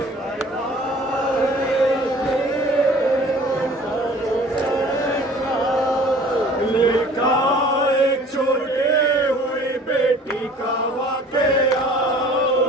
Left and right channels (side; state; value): both; normal; correlation 0.49